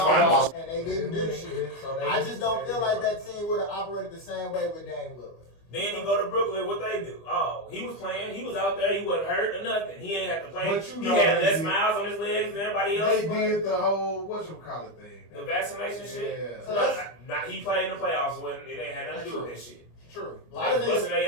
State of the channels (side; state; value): right; late; 25 ms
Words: And they didn't do shit. I just don't feel like that team would have operated the same way with Dame Lillard. Then he go to Brooklyn. What they do? Oh, he was playing. He was out there. He wasn't hurt or nothing. He ain't had to play. He had less miles on his legs than everybody else. They did the whole whatchamacallit thing. The vaccination shit. Yeah. So not he played in the playoffs when it ain't had nothing to do with that shit. True. A lot of niggas busting